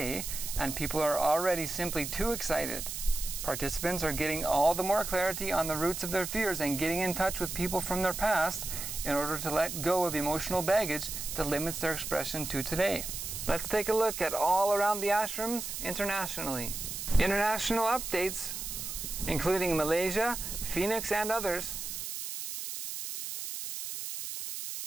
and people are already simply too excited. Participants are getting all the more clarity on the roots of their fears and getting in touch with people from their past in order to let go of emotional baggage that limits their expression to today. Let's take a look at all around the ashrams internationally. International updates, including Malaysia, Phoenix, and others.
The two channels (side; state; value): right; noise; hiss, 6 dB below the sound